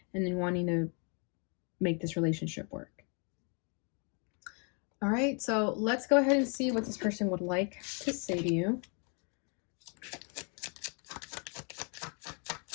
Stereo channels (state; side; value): quieter; right; 36.9 dB